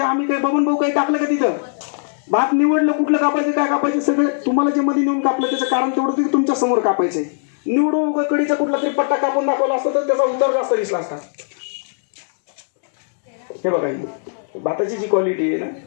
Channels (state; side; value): silent; right; digital silence